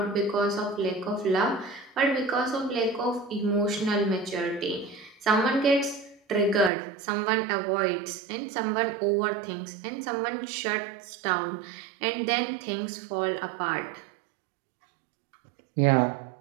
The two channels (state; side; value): drops out; left; at 6.7 s